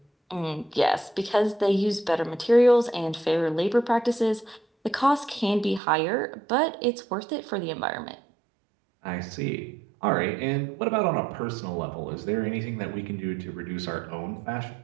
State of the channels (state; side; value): drops out; left; at 5.8 s